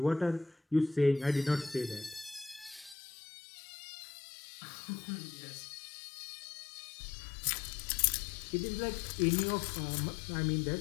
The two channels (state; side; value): drops out; right; at 3.0 s